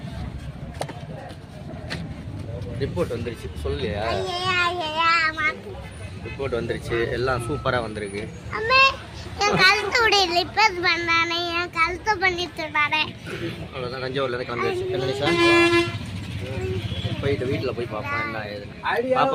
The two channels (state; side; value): identical; both; correlation 1.00